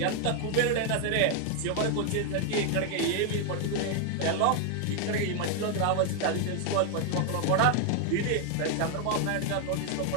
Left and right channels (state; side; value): different; both; correlation 0.00